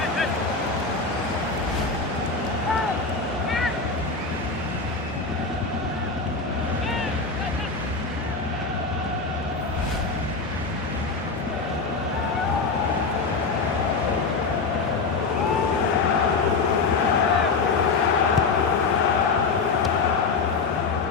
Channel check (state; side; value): quieter; right; 4.3 dB